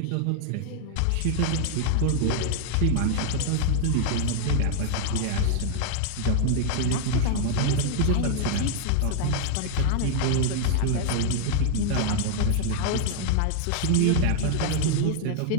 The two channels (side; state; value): both; different; correlation -0.01